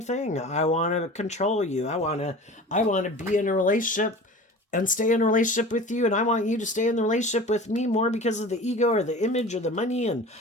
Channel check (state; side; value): normal; both; correlation 0.38